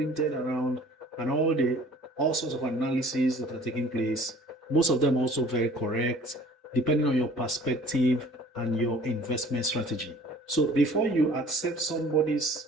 around and all sorts of analyses that are taking place. Most of them also very correct, depending on your perspective and your investment strategy. So before you accept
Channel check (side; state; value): both; normal; correlation 0.50